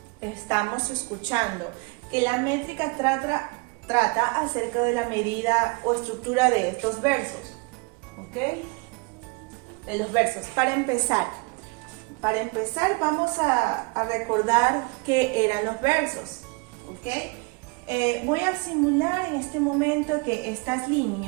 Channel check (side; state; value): left; quieter; 29.5 dB